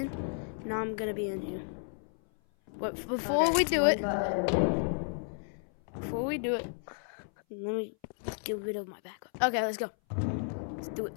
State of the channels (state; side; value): silent; right; 56 dB below the other